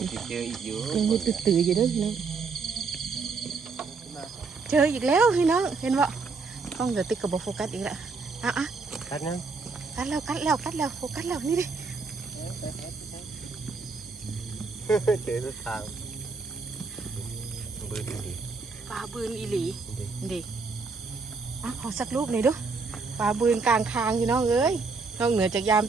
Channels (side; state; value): left; quieter; 4.5 dB